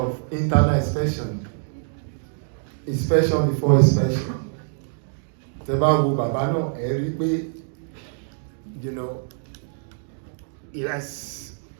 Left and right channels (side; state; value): left; silent; digital silence